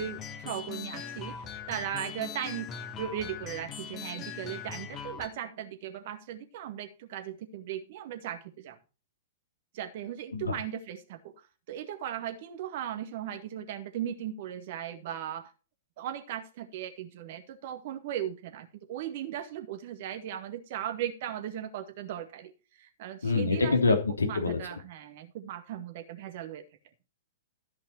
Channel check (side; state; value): both; inverted; correlation -0.45